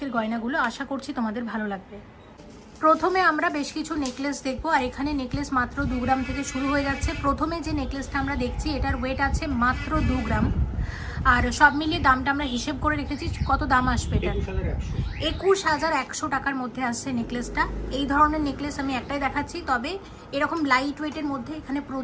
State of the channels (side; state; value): both; identical; correlation 1.00